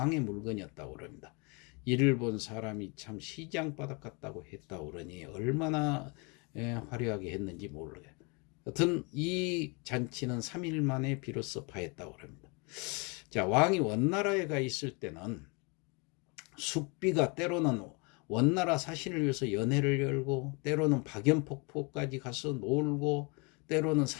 물건이었다고 그럽니다. 이를 본 사람이 참 시장바닥 같다고 했다고 그러니 얼마나 화려하게 했는지 모르겠어요. 여튼 이 잔치는 3일 만에 비로소 파했다고 합니다. 자, 왕이 원나라에 가 있을 때는 숙비가 때로는 원나라 사신을 위해서 연회를 열고 때로는 박연폭포까지 가서 놀고 때로는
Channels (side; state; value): right; quieter; 31.3 dB